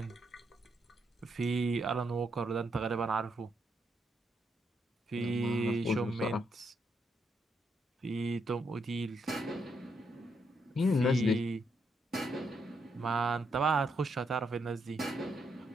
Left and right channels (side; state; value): both; normal; correlation 0.78